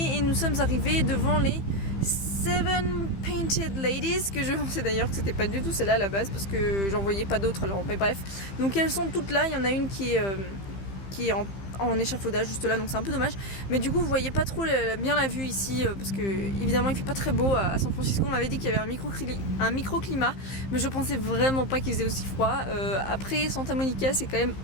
et nous sommes arrivés devant les Seven Painted Ladies, que je pensais d'ailleurs que c'était pas du tout celle-là à la base parce que j'en voyais pas d'autres, alors mais bref. Donc elles sont toutes là, il y en a une qui est en échafaudage juste là, donc c'est un peu dommage, mais du coup vous voyez pas trop bien la vue ici parce que évidemment il fait pas très beau à San Francisco. On m'avait dit qu'il y avait un microclimat, mais je pensais vraiment pas qu'il faisait aussi froid. Après Santa Monica c'est quand même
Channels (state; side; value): late; right; 15 ms